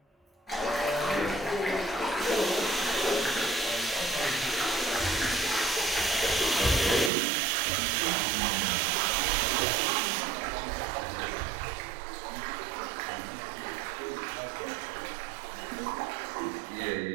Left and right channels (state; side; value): drops out; left; at 7.1 s